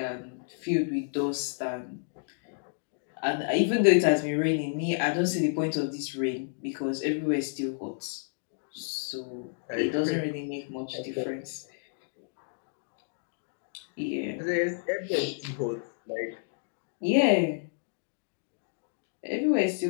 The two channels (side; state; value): right; silent; digital silence